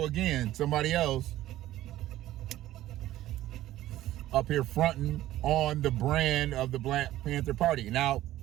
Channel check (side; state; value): left; quieter; 14.4 dB